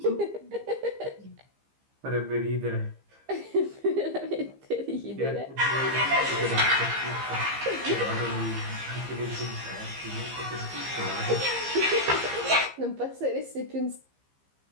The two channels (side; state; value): left; late; 15 ms